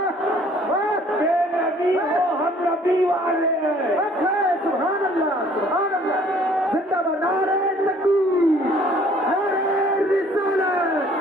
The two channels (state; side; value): normal; both; correlation 0.56